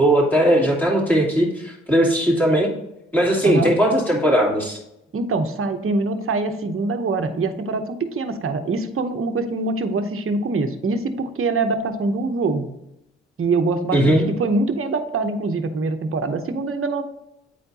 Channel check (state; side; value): normal; both; correlation 0.57